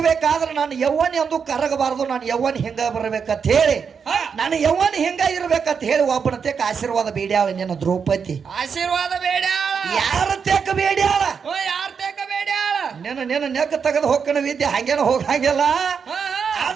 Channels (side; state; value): left; quieter; 6.3 dB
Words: ನಾನು ಯವ್ವನಿ ಅಂದು ಕರಗಬಾರದು ನಾನು ಯವ್ವನಿ ಹಿಂಗ ಬರ್ಬೇಕಂತ ಹೇಳಿ ನಾನು ಯವ್ವನಿ ಹಿಂಗ ಇರ್ಬೇಕಂತ ಹೇಳಿ ಒಬ್ಬನ ತೇಕ ಆಶೀರ್ವಾದ ಬೇಡ್ಯಾಳ ನಿನ್ನ ದ್ರೌಪದಿ ಆಶೀರ್ವಾದ ಬೇಡ್ಯಾಳ ಯಾರ ತೇಕ ಬೇಡ್ಯಾಳ ಯಾರ ತೇಕ ಬೇಡ್ಯಾಳ ನಿನ್ನ ನೆಕ್ಕ ತೆಗೆದು ಹೋಗ್ಕಣ ವಿದ್ಯೆ ಹಂಗೇನ ಹೋಗಂಗಿಲ್ಲ